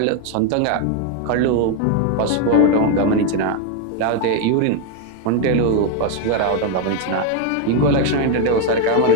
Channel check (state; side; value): different; both; correlation 0.01